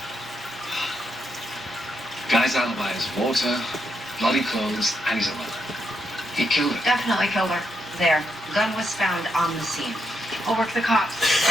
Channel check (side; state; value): both; normal; correlation 0.80